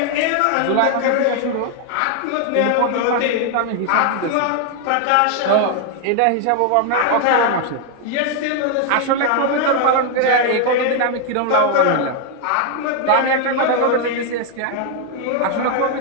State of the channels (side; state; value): both; different; correlation 0.00